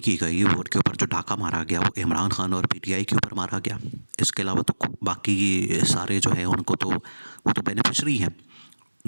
की गई, वोट के ऊपर जो डाका मारा गया वो इमरान खान और पीटीआई के ऊपर मारा गया। इसके अलावा तो बाकी सारे जो है उनको तो वो तो बेनिफिशरी हैं,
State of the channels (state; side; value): inverted; both; correlation -1.00